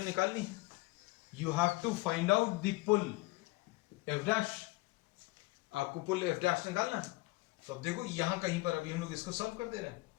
निकालनी है, you have to find out the pull F dash, आपको pull F dash निकालना है। तो अब देखो यहां कहीं पर अभी हम लोग इसको सॉल्व कर दे रहे हैं,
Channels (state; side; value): quieter; right; 22.0 dB